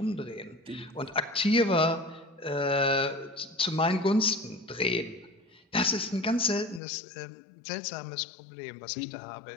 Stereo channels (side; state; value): right; drops out; at 6.8 s